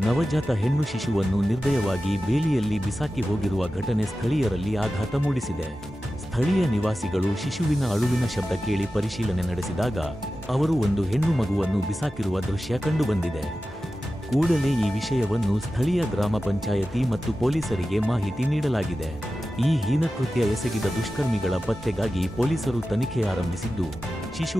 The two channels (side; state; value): both; normal; correlation 0.94